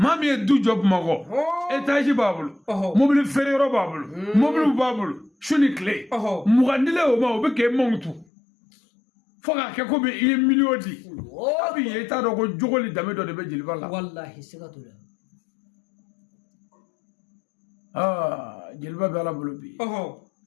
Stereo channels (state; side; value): drops out; right; at 8.2 s